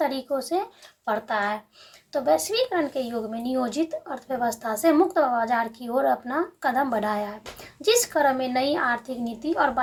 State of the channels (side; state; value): both; identical; correlation 1.00